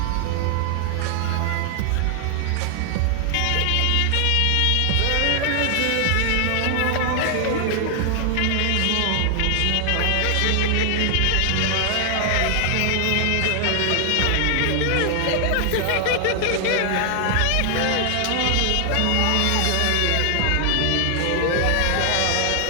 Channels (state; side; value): different; both; correlation 0.00